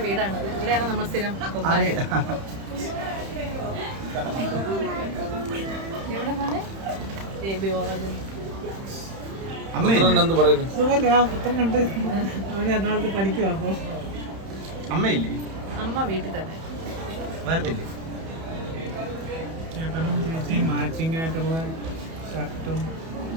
വീടാണ്. ഇവിടെയാണ് നമ്മൾ സ്ഥിരം പൊങ്കാല. എവിടെ പോണേ? ബേബി ഉറങ്ങുന്നു. അമ്മയില്ലേ? അമ്മ വീട്ടിൽ തന്നെ. വരത്തില്ലേ? ചേട്ടനും ചേച്ചിയും മാച്ചിങ് ആയിട്ടുള്ള ഷർട്ടും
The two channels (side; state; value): left; late; 31 ms